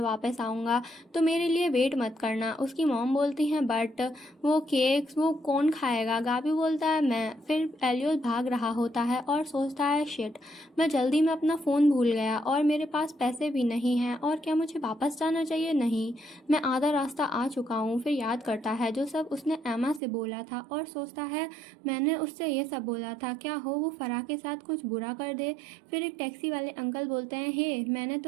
वापस आऊँगा, तो मेरे लिए वेट मत करना। उसकी मॉम बोलती हैं, बट वो केक्स वो कौन खाएगा? गाबी बोलता है, मैं। फिर एलियोस भाग रहा होता है और सोचता है, शिट, मैं जल्दी में अपना फ़ोन भूल गया और मेरे पास पैसे भी नहीं हैं, और क्या मुझे वापस जाना चाहिए? नहीं, मैं आधा रास्ता आ चुका हूँ। फिर याद करता है जो सब उसने एमा से बोला था और सोचता है, मैंने उससे ये सब बोला था, क्या हो वो फरा के साथ कुछ बुरा कर दे। फिर एक टैक्सी वाले अंकल बोलते हैं, हे मैंने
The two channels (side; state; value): left; drops out; at 20.0 s